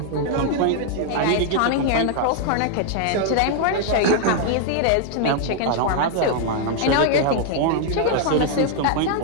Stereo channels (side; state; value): both; different; correlation 0.00